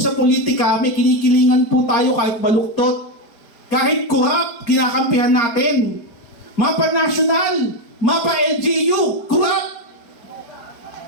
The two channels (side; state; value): right; late; 4.3 ms